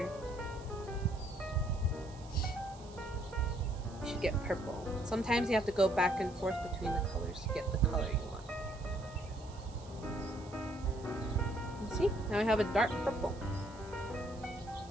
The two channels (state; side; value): noise; right; hiss, 22 dB below the sound